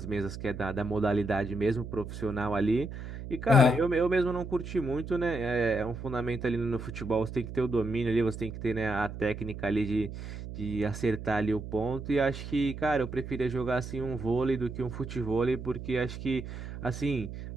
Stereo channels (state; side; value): noise; right; hum, 9 dB below the sound